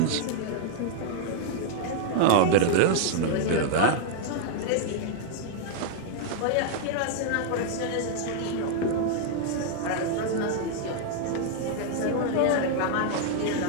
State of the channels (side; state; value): both; different; correlation 0.00